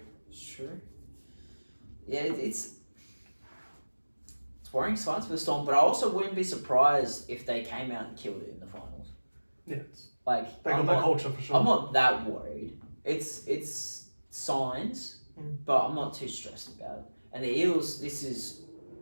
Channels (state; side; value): inverted; both; correlation -1.00